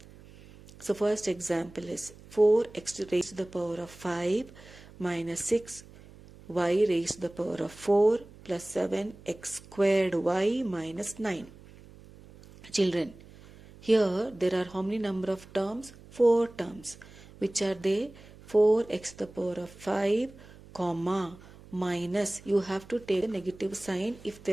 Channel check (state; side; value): noise; right; hum, 21 dB below the sound